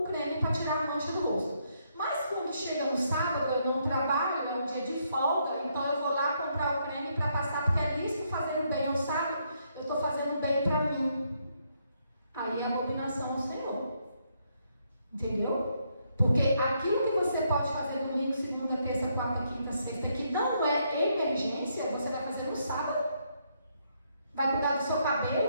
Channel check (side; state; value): both; inverted; correlation -0.75